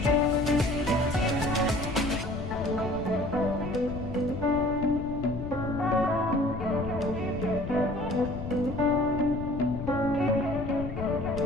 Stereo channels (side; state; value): left; noise; rumble, 8 dB below the sound